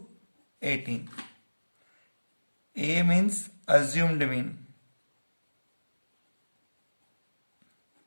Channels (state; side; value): inverted; both; correlation -1.00